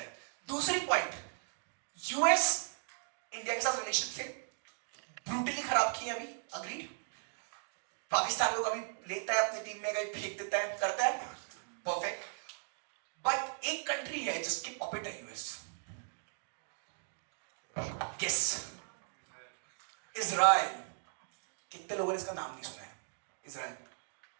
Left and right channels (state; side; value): silent; left; digital silence